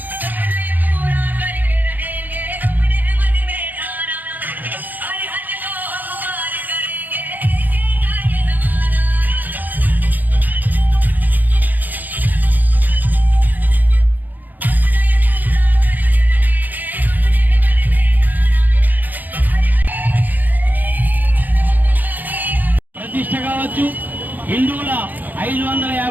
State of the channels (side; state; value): left; late; 0.084 ms